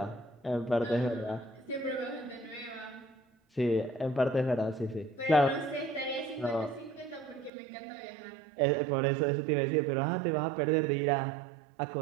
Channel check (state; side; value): drops out; left; at 7.5 s